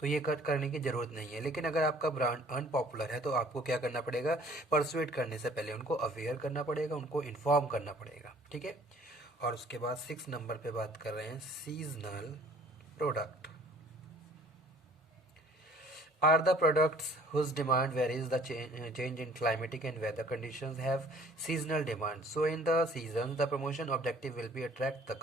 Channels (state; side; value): normal; both; correlation 0.54